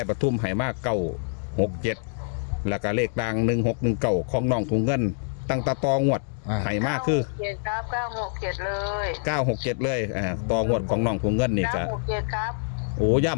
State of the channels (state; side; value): silent; right; digital silence